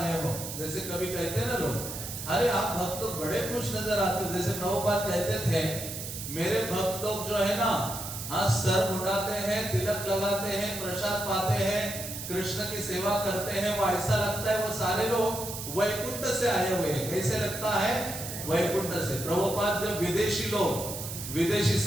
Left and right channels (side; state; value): right; noise; hiss, 8 dB below the sound